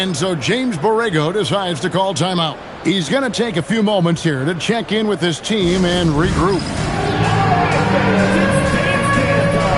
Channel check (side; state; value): both; identical; correlation 1.00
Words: so James Borrego decides to call timeout. He's going to take a few moments here to check in with his team and regroup.